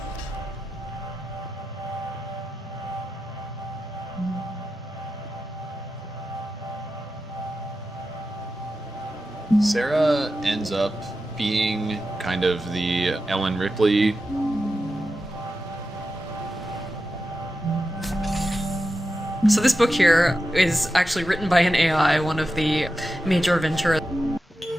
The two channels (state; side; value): normal; both; correlation 0.91